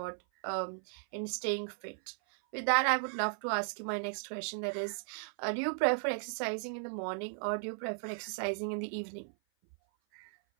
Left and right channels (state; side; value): silent; left; 54 dB below the other